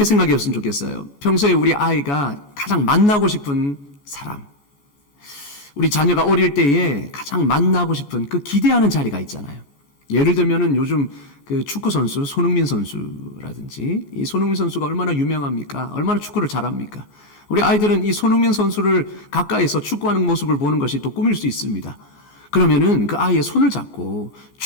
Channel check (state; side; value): late; right; 14 ms